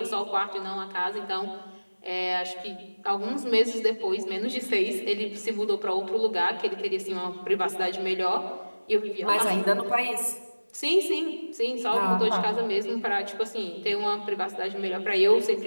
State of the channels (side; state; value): both; inverted; correlation -1.00